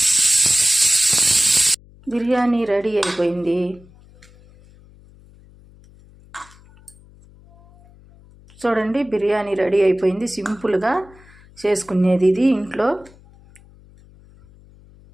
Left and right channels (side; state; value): left; noise; hum, 26 dB below the sound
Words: బిర్యానీ రెడీ అయిపోయింది. చూడండి, బిర్యానీ రెడీ అయిపోయింది. సింపుల్గా చేసుకునేది ఇది ఇంట్లో.